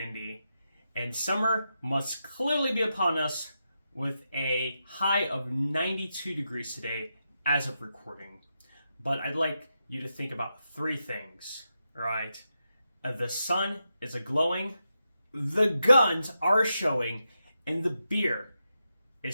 and summer must clearly be upon us with a high of 92 degrees today as of recording. But I'd like you to think about three things, right? The sun is a-glowing, the guns are showing, and the beer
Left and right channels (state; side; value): inverted; both; correlation -0.87